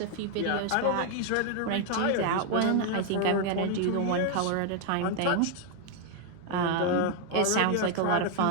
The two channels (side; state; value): both; different; correlation 0.00